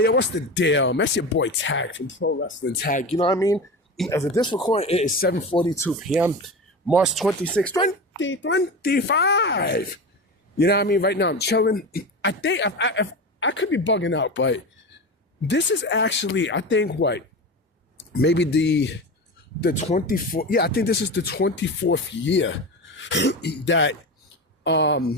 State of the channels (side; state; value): both; normal; correlation 0.25